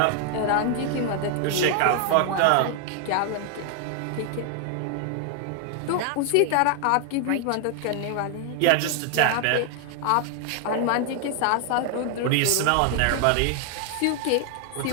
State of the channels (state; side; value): different; both; correlation 0.00